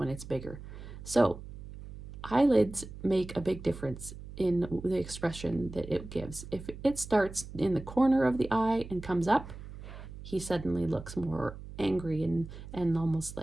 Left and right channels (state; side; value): noise; right; hum, 13 dB below the sound